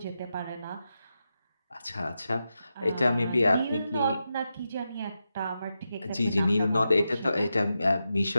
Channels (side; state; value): both; inverted; correlation -0.88